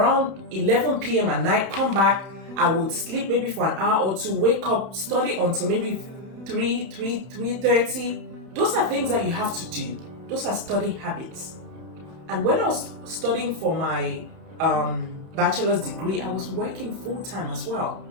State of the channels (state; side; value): late; left; 31 ms